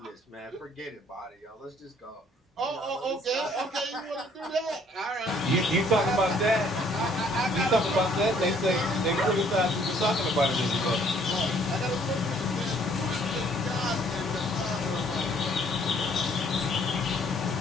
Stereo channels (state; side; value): normal; both; correlation 0.62